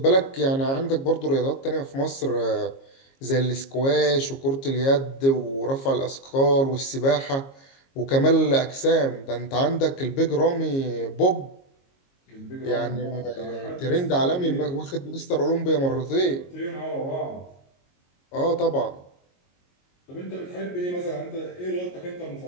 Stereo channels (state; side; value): late; right; 22 ms